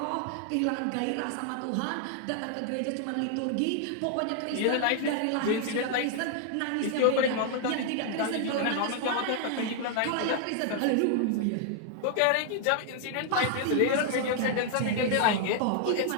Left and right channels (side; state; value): both; different; correlation 0.00